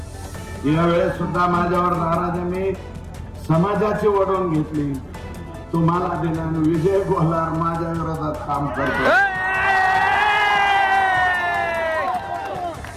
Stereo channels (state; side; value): identical; both; correlation 1.00